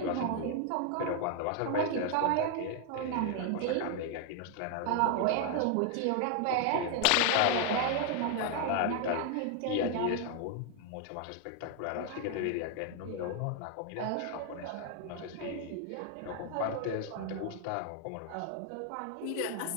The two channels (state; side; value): different; both; correlation 0.00